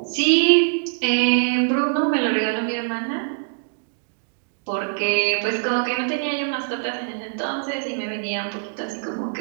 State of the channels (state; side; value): silent; left; digital silence